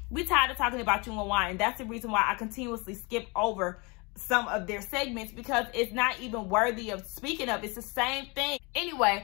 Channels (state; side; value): quieter; right; 28.6 dB